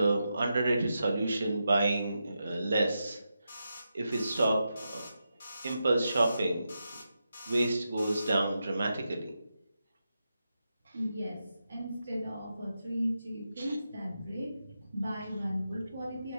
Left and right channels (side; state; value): both; inverted; correlation -0.88